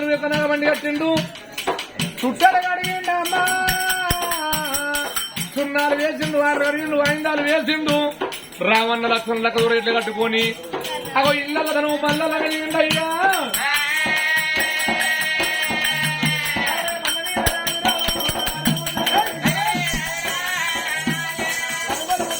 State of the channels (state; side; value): identical; both; correlation 1.00